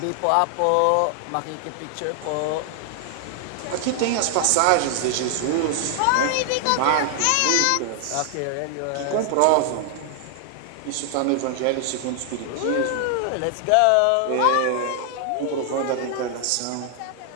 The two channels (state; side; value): different; both; correlation 0.00